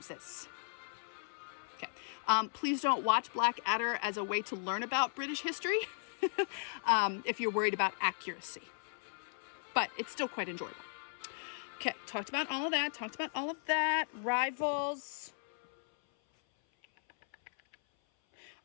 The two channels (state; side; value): silent; right; 53 dB below the other